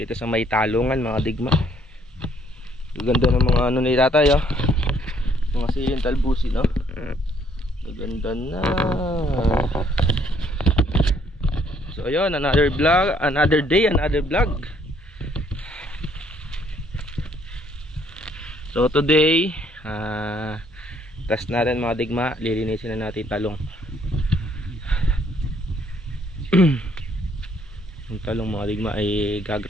sa may talungan mga digma. Ganda ng mga ni tatay oh. Mga siling talbusi no. Ganda na. So ayun, another vlog, another day, another vlog. So today, test natin mga digma, lilinisin na natin talong. Yung talong mga digma ay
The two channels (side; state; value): both; normal; correlation 0.66